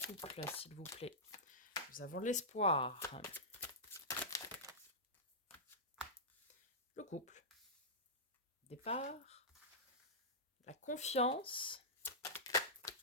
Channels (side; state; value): both; normal; correlation -0.14